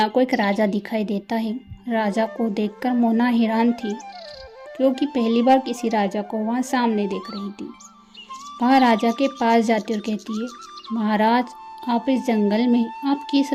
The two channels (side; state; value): both; identical; correlation 1.00